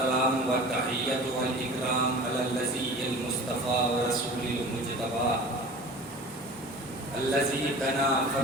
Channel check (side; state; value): both; normal; correlation 0.39